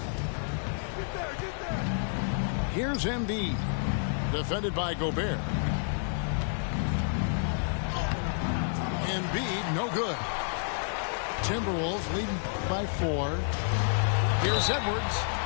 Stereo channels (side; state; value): right; silent; digital silence